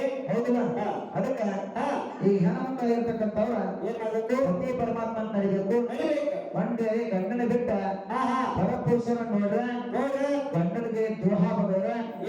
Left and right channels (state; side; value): identical; both; correlation 1.00